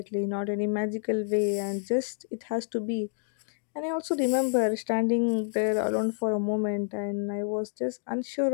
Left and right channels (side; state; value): right; silent; digital silence